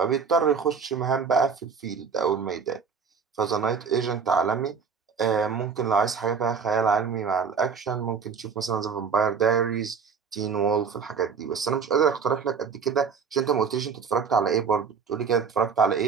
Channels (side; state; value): left; quieter; 6.1 dB